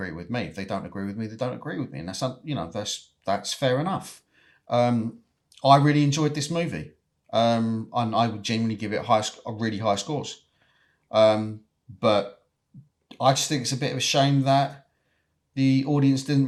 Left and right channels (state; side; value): identical; both; correlation 1.00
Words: with me. If they don't agree with me, they don't agree with me, and that's fair enough. I really enjoyed this movie, and I would genuinely give it really high scores. But I just think it's a bit of a shame that the audience